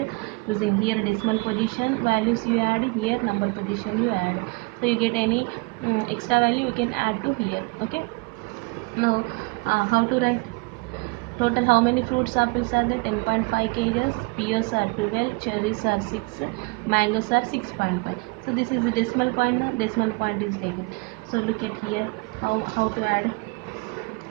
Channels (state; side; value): quieter; left; 28.2 dB